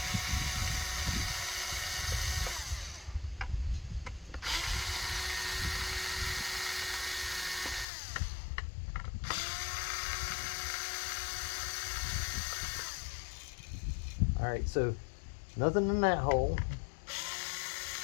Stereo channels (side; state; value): right; drops out; at 7.9 s